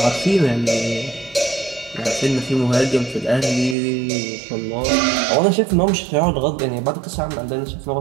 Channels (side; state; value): left; drops out; at 3.8 s